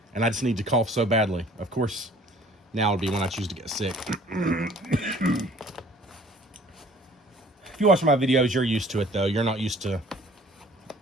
and I just need to cough so badly. Of course, now would be when I choose to get sick. If you watch my videos, you're used to it, though. You're not used to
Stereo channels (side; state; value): both; normal; correlation 0.53